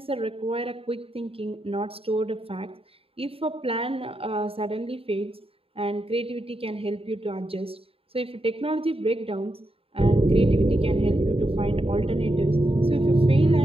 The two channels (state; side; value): late; left; 0.27 ms